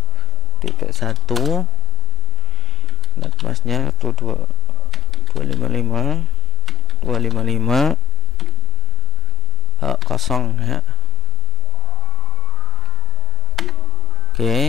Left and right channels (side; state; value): both; normal; correlation 0.87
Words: netmasnya 255 kosong ya.